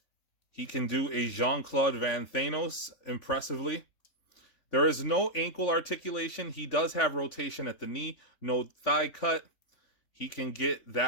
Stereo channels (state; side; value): late; right; 3.5 ms